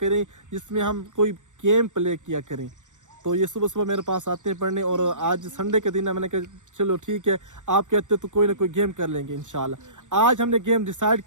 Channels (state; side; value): late; left; 0.85 ms